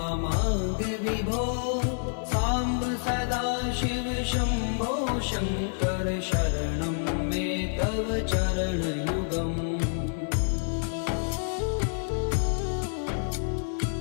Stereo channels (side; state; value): right; silent; 59 dB below the other